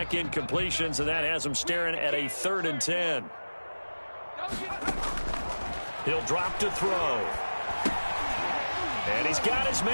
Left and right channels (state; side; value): inverted; both; correlation -1.00